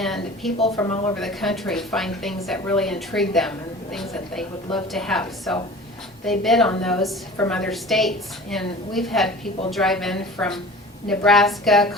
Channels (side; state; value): both; normal; correlation 0.40